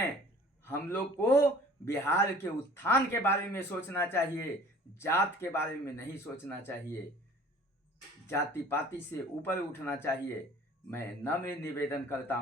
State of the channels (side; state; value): both; normal; correlation 0.48